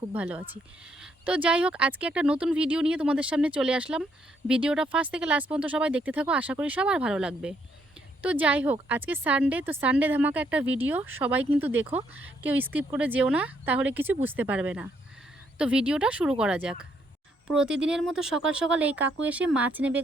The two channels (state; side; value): normal; both; correlation 0.73